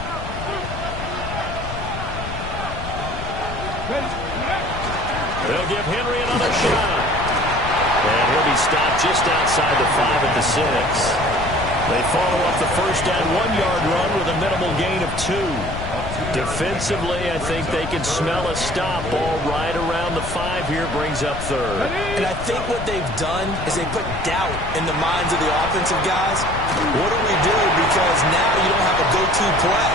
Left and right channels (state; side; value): noise; left; rumble, 8 dB below the sound